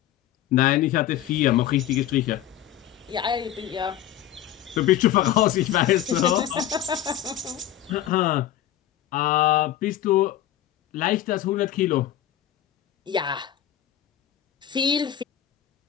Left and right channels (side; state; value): right; quieter; 11.9 dB